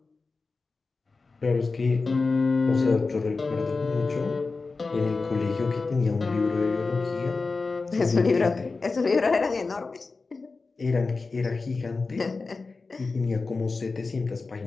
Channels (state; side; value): quieter; right; 4.0 dB